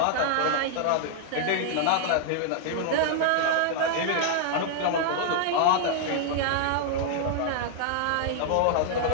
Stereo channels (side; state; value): both; different; correlation -0.01